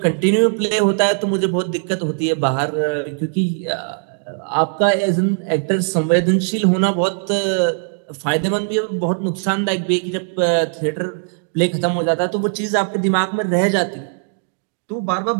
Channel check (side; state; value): left; silent; digital silence